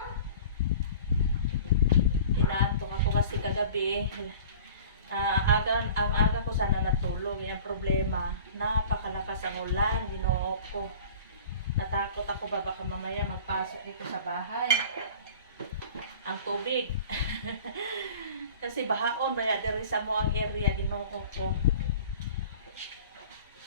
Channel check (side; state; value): both; inverted; correlation -0.42